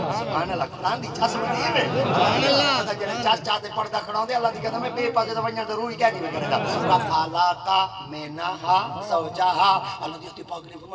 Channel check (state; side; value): identical; both; correlation 1.00